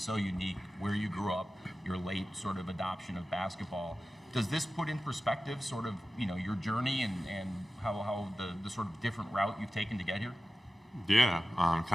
unique, where you grew up, your late sort of adoption of basketball. Does this put in perspective sort of, you know, your journey and how the sort of different route you've taken to get here? Yeah,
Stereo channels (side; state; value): both; normal; correlation 0.95